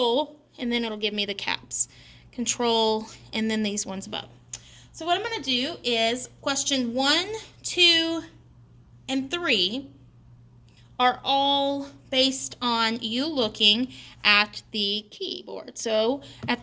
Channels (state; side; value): identical; both; correlation 1.00